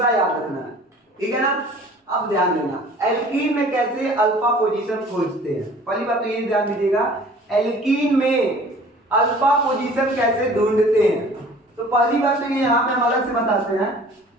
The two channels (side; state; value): both; normal; correlation 0.48